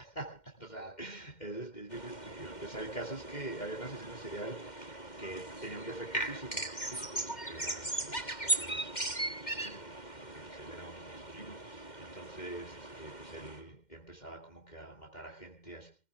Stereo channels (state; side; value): late; right; 2.1 ms